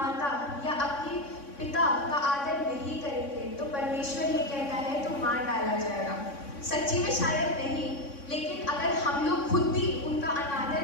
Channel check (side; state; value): right; late; 3.6 ms